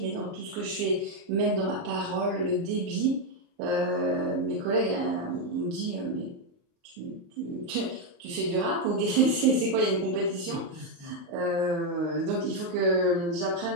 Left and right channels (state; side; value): late; left; 33 ms